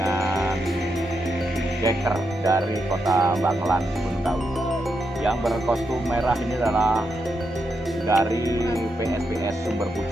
Deker dari Kota Bangelan, Gunung Kawi. Yang berkostum merah ini adalah dari PSPS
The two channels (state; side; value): normal; both; correlation 0.83